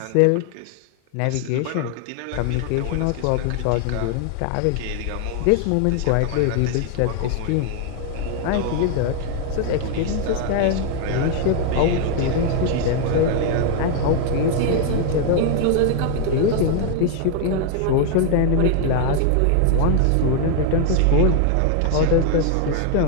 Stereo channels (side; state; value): both; different; correlation 0.00